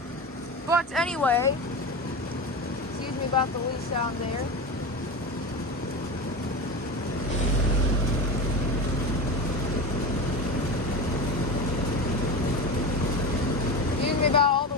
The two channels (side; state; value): both; normal; correlation 0.24